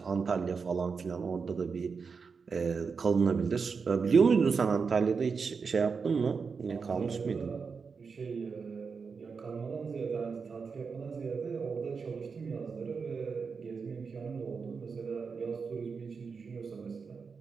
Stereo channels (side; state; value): left; quieter; 5.3 dB